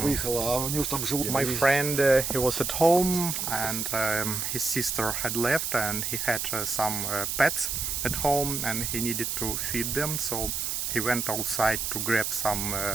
выехала, а у него там живут. My friend, he was at home and his sister had left and he had some pets at home and he needed to feed them, so he went outside to grab some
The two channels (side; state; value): right; noise; hiss, 2 dB below the sound